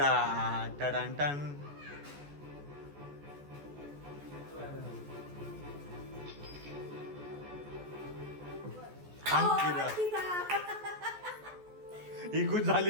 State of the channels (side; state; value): left; late; 14 ms